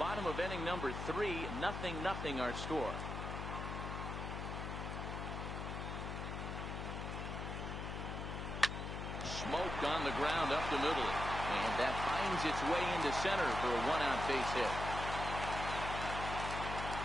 of inning number 3, 0-0 our score. Smoked on the ground up the middle. And that finds its way into center for a 1-out base hit.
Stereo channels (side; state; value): left; noise; hum, 5 dB below the sound